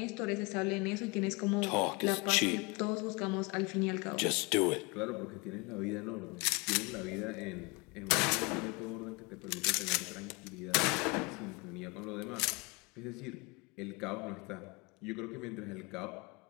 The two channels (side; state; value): right; quieter; 27.8 dB